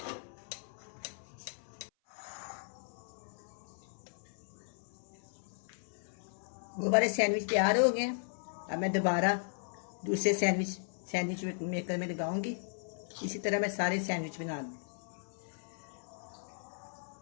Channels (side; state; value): right; silent; 54 dB below the other